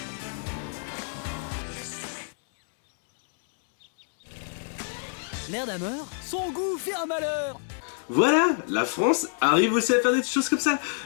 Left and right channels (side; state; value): right; silent; digital silence